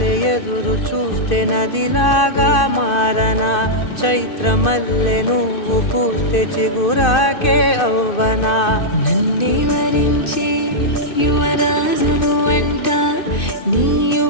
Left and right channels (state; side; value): late; right; 2.6 ms